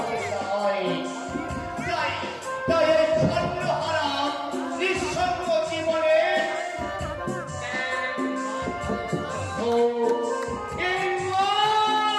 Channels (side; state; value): both; identical; correlation 1.00